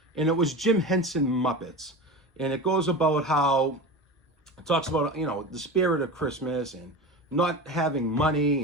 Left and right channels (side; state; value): both; normal; correlation 0.28